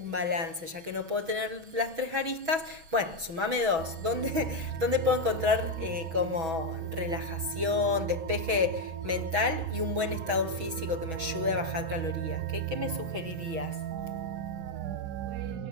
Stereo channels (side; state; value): left; late; 6.2 ms